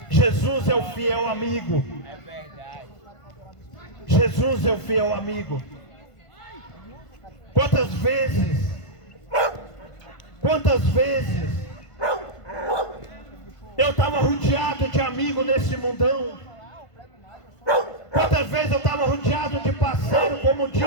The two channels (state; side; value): late; right; 1.5 ms